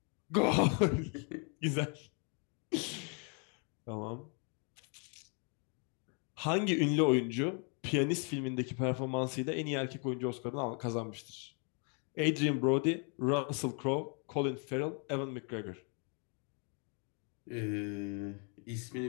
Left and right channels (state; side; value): quieter; right; 38.4 dB